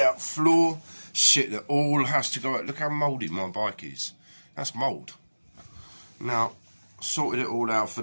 floor. Shit that all has to go out. Look how mouldy my bike is. That's mould. Now, sorted it all out for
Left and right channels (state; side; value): inverted; both; correlation -1.00